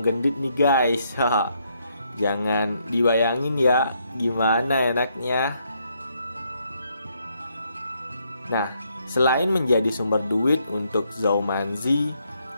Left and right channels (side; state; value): both; inverted; correlation -0.74